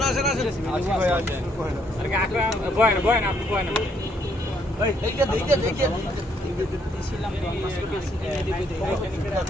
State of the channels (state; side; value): normal; both; correlation 0.70